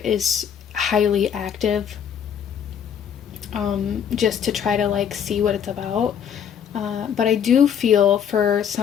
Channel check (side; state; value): right; quieter; 8.3 dB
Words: is highly active, just to try to see what it's about. But I do feel for